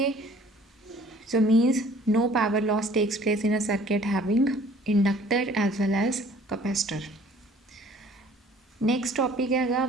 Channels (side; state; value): both; normal; correlation 0.54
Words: so means no power loss takes place in a circuit having inductor as well as capacitor. Next topic है